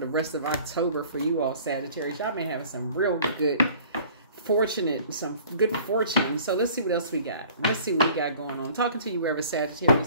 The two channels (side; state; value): both; inverted; correlation -0.50